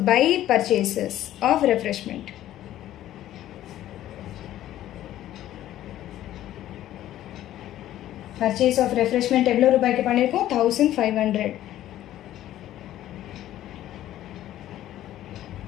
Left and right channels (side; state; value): right; quieter; 13.2 dB